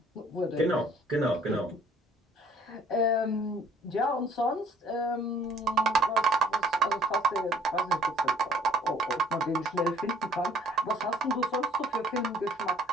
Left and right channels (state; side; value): normal; both; correlation 0.57